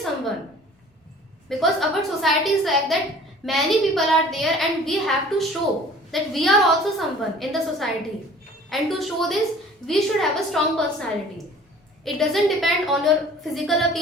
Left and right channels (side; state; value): both; normal; correlation 0.49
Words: Because our society is like that, many people are there, and we have to show that we are also someone in the society. And to show this, we should have a strong personality. It doesn't depend on your physical